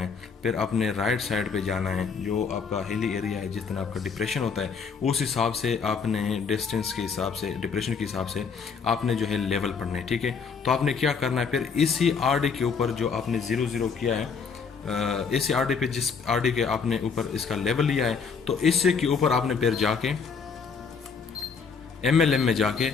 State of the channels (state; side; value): quieter; right; 5.7 dB